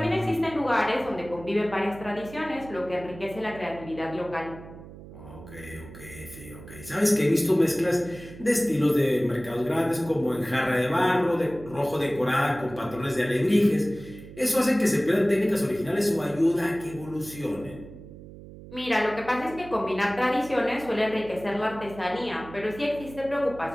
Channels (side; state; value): right; noise; hum, 16 dB below the sound